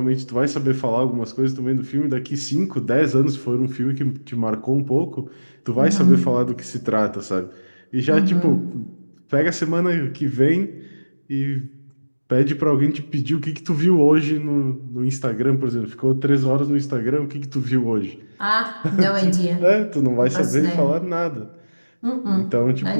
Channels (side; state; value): both; inverted; correlation -1.00